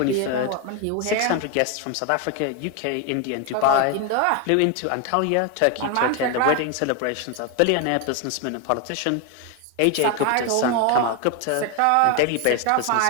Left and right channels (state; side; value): different; both; correlation 0.01